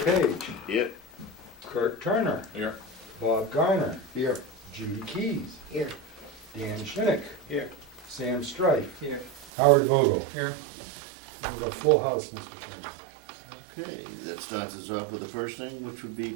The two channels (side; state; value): left; drops out; at 9.5 s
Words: Here. Kurt Turner. Here. Bob Garner. Here. Judy Keys. Here. Dan Schinick. Here. Sam Strife. Here. Howard Vogel. Here. We have a full house, Mr. Chairman. Okay, that starts us off with the first thing, which would be